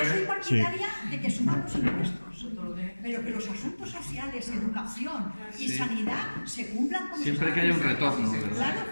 soy partidaria de que suban los impuestos, pero que los asuntos sociales, educación y sanidad se cumplan como siempre que haya un retorno, ¿verdad? Claro,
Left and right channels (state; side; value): inverted; both; correlation -1.00